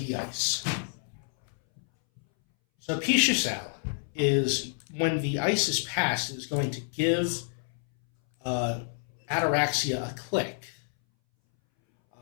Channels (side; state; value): right; silent; 59 dB below the other